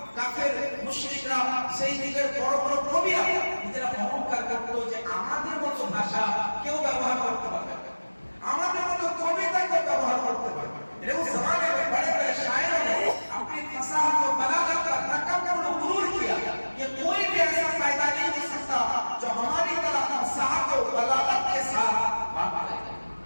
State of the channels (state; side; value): inverted; both; correlation -1.00